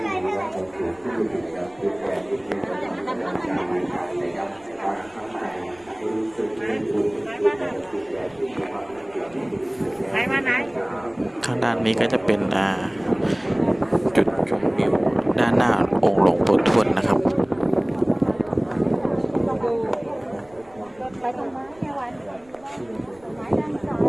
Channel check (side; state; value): right; noise; rumble, 28 dB below the sound